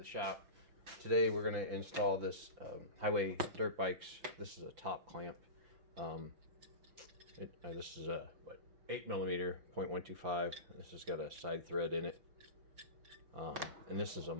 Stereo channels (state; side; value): late; left; 5.9 ms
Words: shop. Today we're gonna install this highway dirt bikes. This is a top clamp. This is a 8mm 0.125. This has got a side thread in it, and this is a